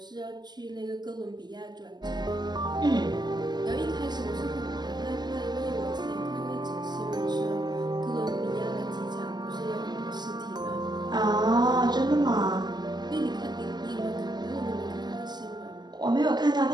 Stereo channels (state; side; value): late; left; 0.21 ms